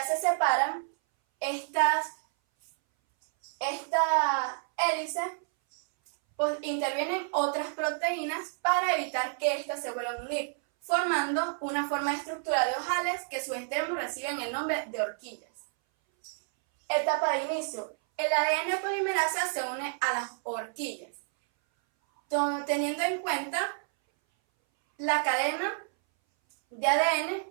se separan esta hélice, pues intervienen otras proteínas para evitar que éstas se vuelvan a unir, formando una forma de estructura de ojales que sus extremos reciben el nombre de horquillas. Etapa de inicio. El ADN polimerasa se une a las horquillas. teniendo en cuenta la cadena de ADN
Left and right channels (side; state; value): left; silent; 58 dB below the other